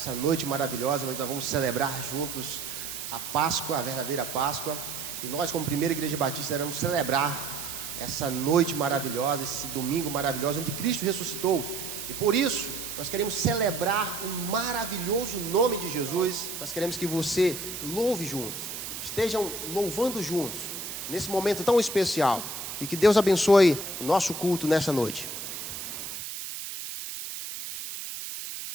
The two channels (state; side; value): noise; right; hiss, 7 dB below the sound